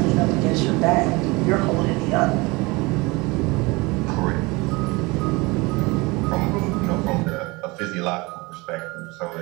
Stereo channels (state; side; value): quieter; left; 24.6 dB